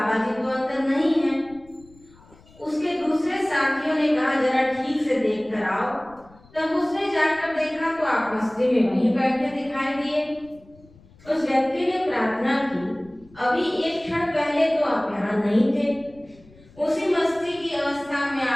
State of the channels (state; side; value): noise; left; rumble, 26 dB below the sound